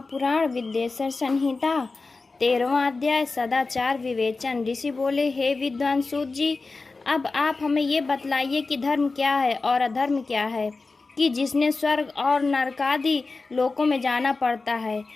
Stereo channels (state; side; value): quieter; right; 3.8 dB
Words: विद्येश्वर संहिता 13वां अध्याय सदाचार विवेचन। ऋषि बोले, हे विद्वान सूत जी, अब आप हमें ये बतलाइए कि धर्म क्या है और अधर्म क्या है, कि जिसने स्वर्ग और नरकादि लोकों में जाना पड़ता है,